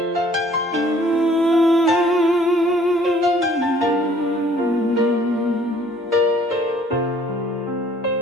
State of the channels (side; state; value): both; normal; correlation 0.57